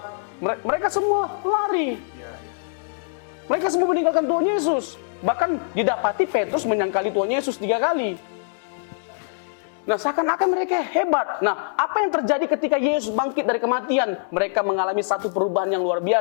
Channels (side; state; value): right; silent; digital silence